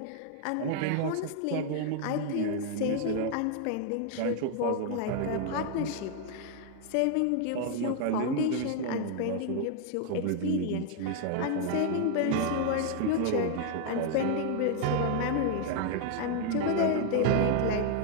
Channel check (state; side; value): different; both; correlation 0.00